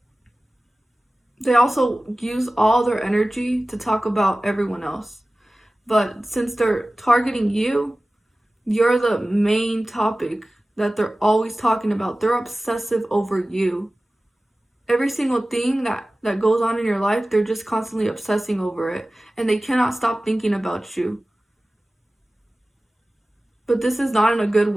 they also use all their energy to talk about everyone else. But since they're targeting you, you're the main topic that they're always talking about. They're obsessive over you. Every single thing that goes on in your life, they're just constantly obsessing over it. And they cannot stop thinking about you. But this is not in a good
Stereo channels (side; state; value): both; normal; correlation 0.97